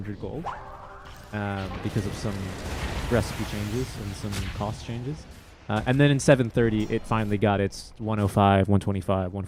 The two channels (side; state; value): both; identical; correlation 1.00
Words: gold because of some recipe changes and some cost changes. And then in 730 it finally got its 105, 125,